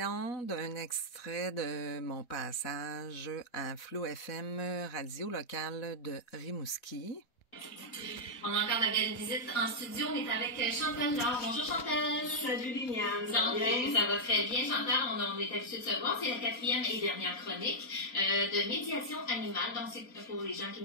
d'un extrait de mon passage à Flow FM, radio locale de Rimouski. On a encore la belle visite en studio. On est avec Chantal Laure. Bonjour Chantal. Salut Liliane. Ça va très bien Chantal. On est habitué de se voir. C'est la 4e et dernière chronique de médiation animale. Donc c'est pour les gens qui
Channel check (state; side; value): late; right; 3.9 ms